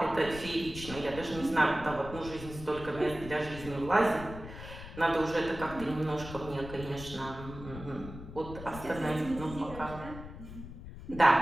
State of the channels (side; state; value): left; noise; rumble, 12 dB below the sound